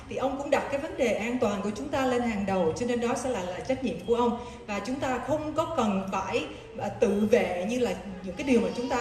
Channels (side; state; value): both; identical; correlation 1.00